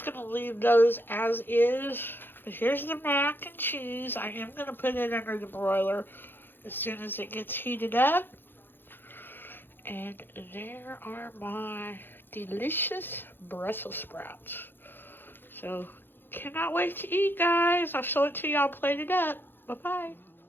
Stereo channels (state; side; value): late; right; 0.099 ms